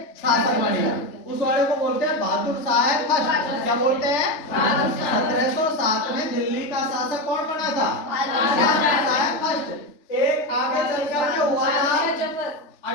शासक बन गया। उस वाले को बोलते हैं बहादुर शाह फर्स्ट। क्या बोलते हैं, 1707 में दिल्ली का शासक कौन बना था, बहादुर शाह फर्स्ट। एक आगे चल करके हुआ था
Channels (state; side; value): late; right; 3.4 ms